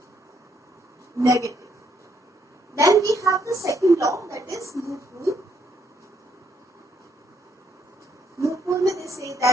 negative. Then we have the second law, that is loop rule. Loop rule mein they say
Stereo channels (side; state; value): both; normal; correlation 0.72